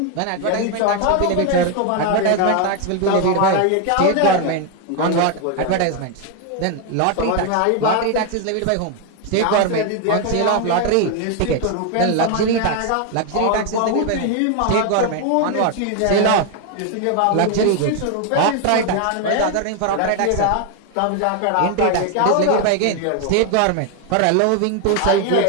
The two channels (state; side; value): different; both; correlation 0.01